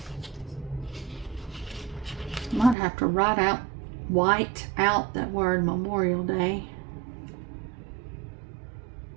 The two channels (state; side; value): drops out; left; at 2.8 s